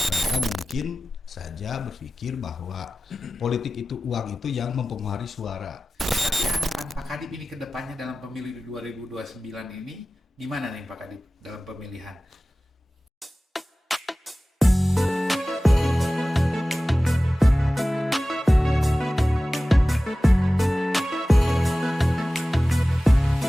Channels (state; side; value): normal; both; correlation 0.96